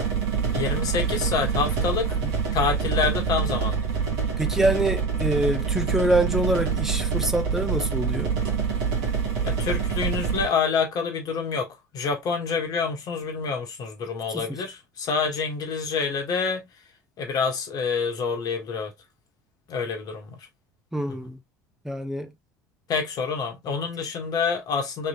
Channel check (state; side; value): normal; both; correlation 0.27